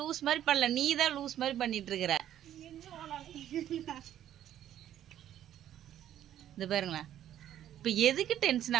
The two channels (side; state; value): left; quieter; 11.4 dB